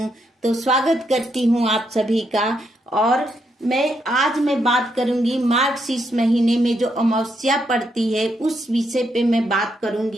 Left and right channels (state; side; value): normal; both; correlation 0.78